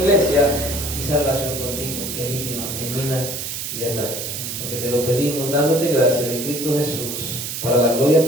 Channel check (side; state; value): right; noise; hiss, 5 dB below the sound